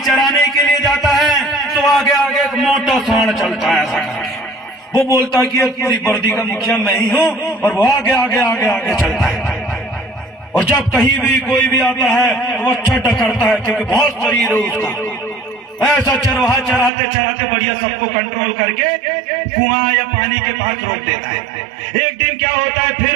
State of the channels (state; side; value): drops out; left; at 16.9 s